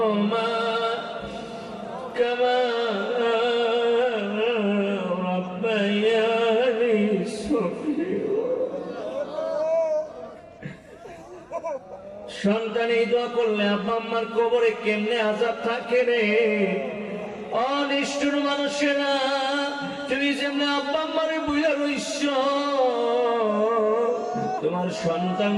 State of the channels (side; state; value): both; identical; correlation 1.00